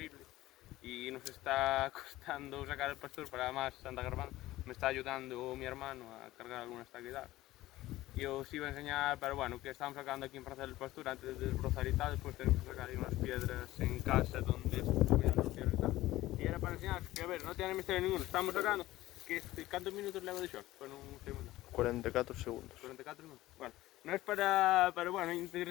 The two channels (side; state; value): right; quieter; 16.6 dB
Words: y nos está costando sacar el pastor para más Santa Grabando. Me está ayudando mi hermano a cargar algunas taquedadas. Y os iba a enseñar, pero bueno, que estamos sacando aquí en Plaza del Pastor antes de desbrozar y tal. Después tenemos que sacar ahí unas piedras en casa donde estuvieran los piedras y tal. Y era para enseñaros que, a ver, no tiene misterio ninguno. Estamos sacando que ¿cuántos minutos le hago de short? Bueno, un segundo. 44 segundos. 44 minutos. Bueno, no es para, pero bueno,